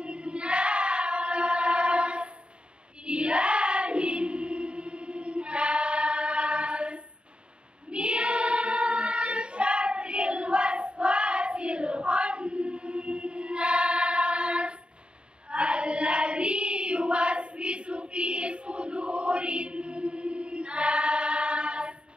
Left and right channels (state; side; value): late; left; 0.054 ms